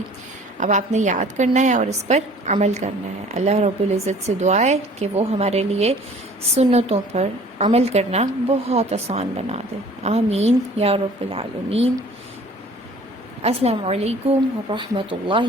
اب آپ نے یاد کرنا ہے اور اس پر عمل کرنا ہے۔ اللہ رب العزت سے دعا ہے کہ وہ ہمارے لیے سنتوں پر عمل کرنا بہت آسان بنا دے۔ آمین یا رب العالمین۔ السلام علیکم ورحمۃ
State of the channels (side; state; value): both; normal; correlation 0.50